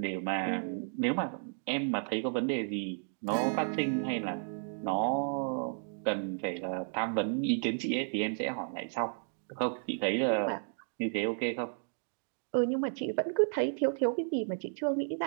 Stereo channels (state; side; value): silent; left; digital silence